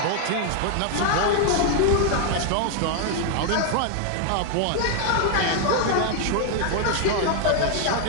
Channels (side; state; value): both; different; correlation 0.00